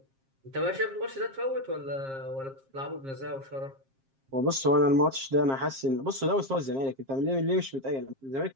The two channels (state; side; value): late; left; 7.5 ms